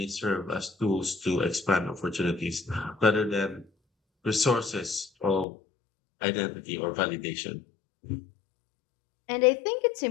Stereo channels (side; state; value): right; drops out; at 5.5 s